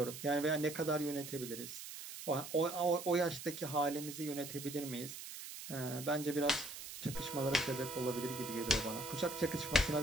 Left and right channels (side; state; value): right; noise; hiss, 10 dB below the sound